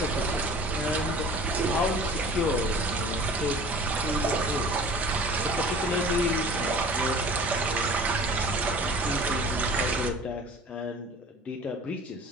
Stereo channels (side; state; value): both; normal; correlation 0.44